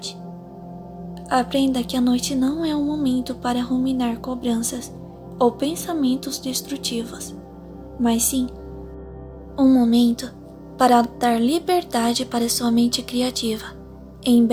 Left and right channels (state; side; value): identical; both; correlation 1.00